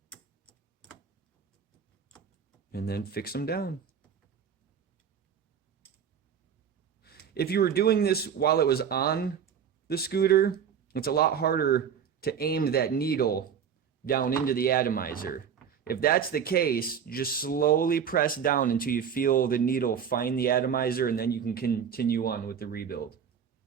and then fix them down. If you were doing this while it was on the scooter, it's a lot harder to aim that needle down into the atomizer. If that's the case, just slowly press down until you feel the needle find the atomizer, and then you can continue on with the rebuild.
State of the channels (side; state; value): left; quieter; 7.7 dB